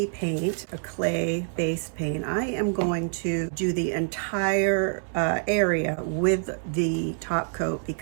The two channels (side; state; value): left; silent; 61 dB below the other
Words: paint, a clay-based paint, I am going to do the entire area with the top coat,